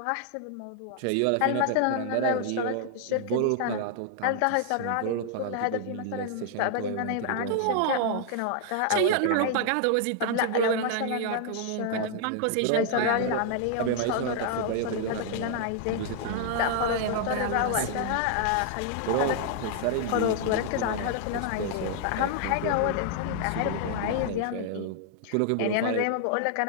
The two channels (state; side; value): different; both; correlation 0.00